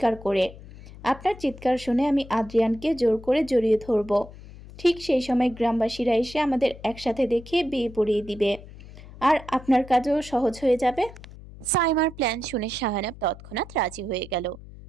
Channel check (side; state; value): left; noise; hum, 17 dB below the sound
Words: করে। আপনার চিৎকার শুনে আমি আদ্রিয়ানকে জোর করে জড়িয়ে ধরব। ঠিক সেই সময় গ্রামবাসীরা এসে আমাদের একসাথে দেখে বিয়ে পড়িয়ে দিবে, আর আপনার কাজও সহজ হয়ে যাবে। সাইমার প্ল্যান শুনে শাহানাব তৎক্ষণাৎ রাজি হয়ে গেল।